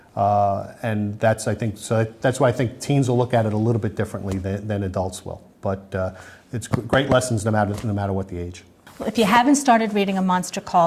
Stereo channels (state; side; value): identical; both; correlation 1.00